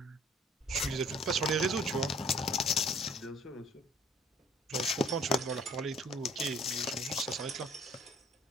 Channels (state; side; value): normal; both; correlation 0.54